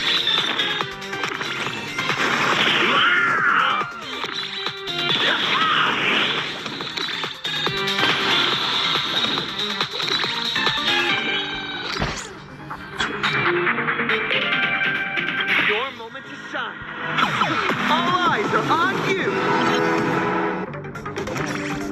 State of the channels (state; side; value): identical; both; correlation 1.00